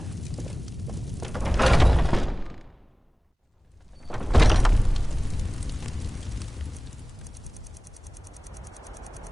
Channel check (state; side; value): normal; both; correlation 0.98